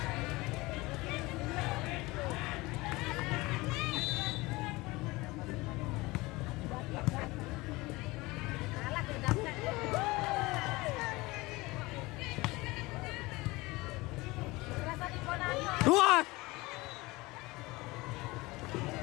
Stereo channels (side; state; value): right; quieter; 21.9 dB